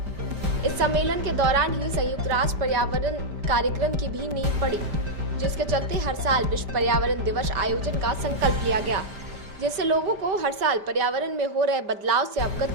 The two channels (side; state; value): left; late; 5.1 ms